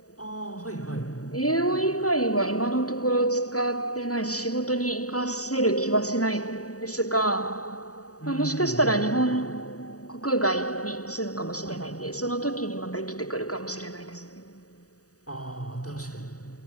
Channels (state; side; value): late; right; 0.66 ms